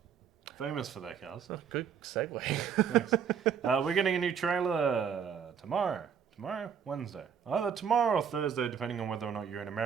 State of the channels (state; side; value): quieter; left; 7.5 dB